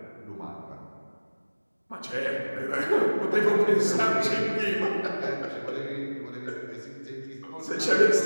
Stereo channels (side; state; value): both; inverted; correlation -1.00